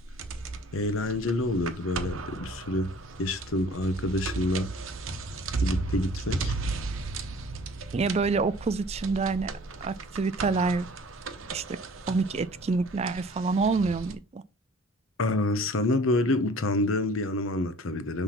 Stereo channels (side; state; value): both; normal; correlation 0.49